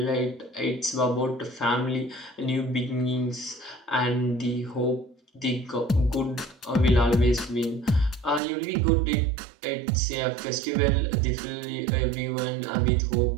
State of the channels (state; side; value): drops out; left; at 8.4 s